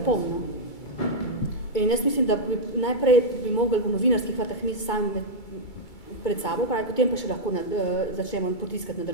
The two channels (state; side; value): late; right; 2.2 ms